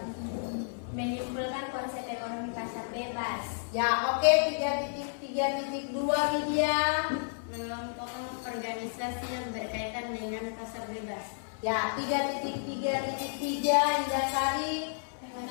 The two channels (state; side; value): silent; right; 57 dB below the other